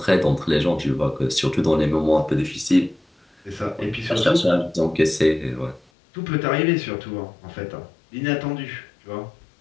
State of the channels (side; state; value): right; drops out; at 5.8 s